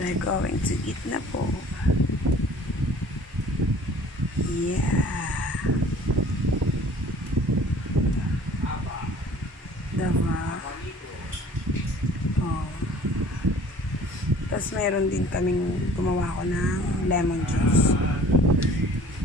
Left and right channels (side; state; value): both; normal; correlation 0.50